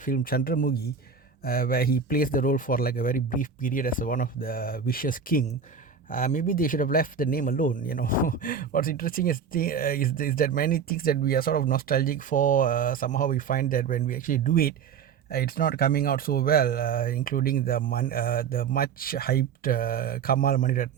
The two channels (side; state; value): left; quieter; 6.3 dB